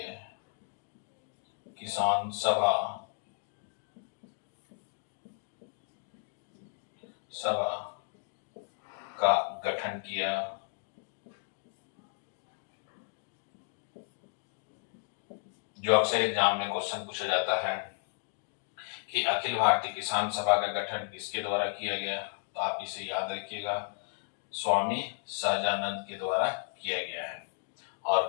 किसान सभा का गठन किया। जो अक्सर एग्जाम में क्वेश्चन पूछा जाता है कि अखिल भारतीय किसान सभा का गठन किसके द्वारा किया गया, तो आप इसे याद रखिएगा, स्वामी सहजानंद के द्वारा किया गया है।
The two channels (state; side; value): silent; right; digital silence